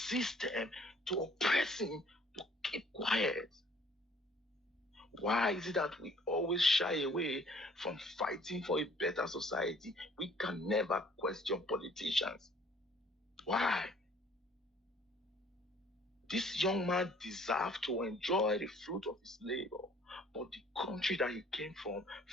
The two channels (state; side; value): normal; both; correlation 0.57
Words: to oppress him to keep quiet. Why is it that we always shy away from fighting for a better society? We can never question politicians. Why? This young man deserved to enjoy the fruit of his labor, but the country that he came from